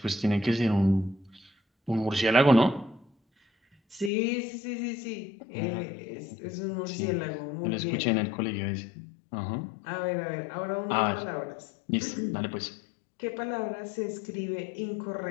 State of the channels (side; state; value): right; drops out; at 4.1 s